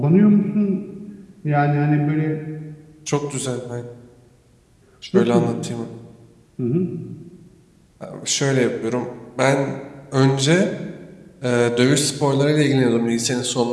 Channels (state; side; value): identical; both; correlation 1.00